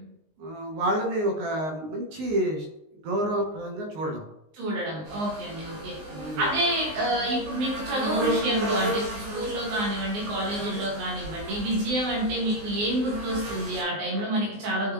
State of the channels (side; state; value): left; late; 19 ms